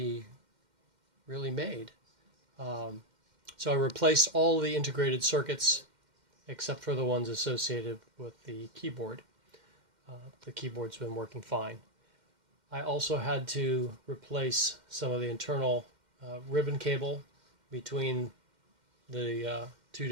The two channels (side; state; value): left; late; 2.1 ms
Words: really made. So I replaced all the integrated circuits except for the ones associated with the keyboard. The keyboard's been working fine. I also had to replace some of the internal ribbon cable between the two